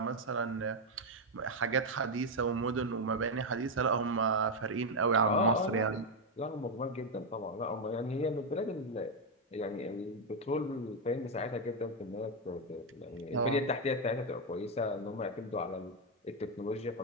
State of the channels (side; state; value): both; normal; correlation 0.04